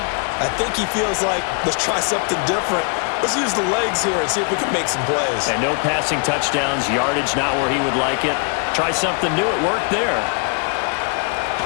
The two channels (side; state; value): right; quieter; 37.7 dB